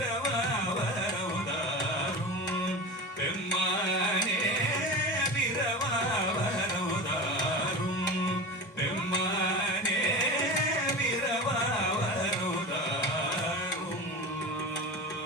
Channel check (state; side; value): normal; both; correlation 0.28